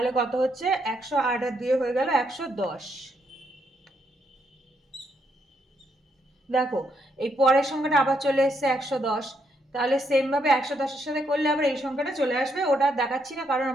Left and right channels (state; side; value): normal; both; correlation 0.76